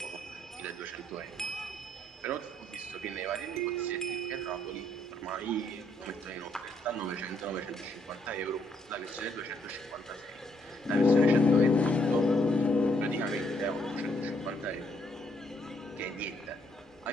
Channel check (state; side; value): normal; both; correlation 0.72